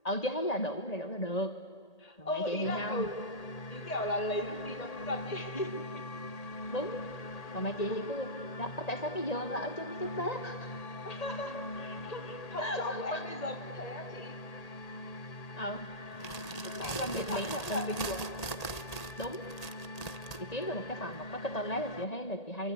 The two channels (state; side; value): late; right; 1.8 ms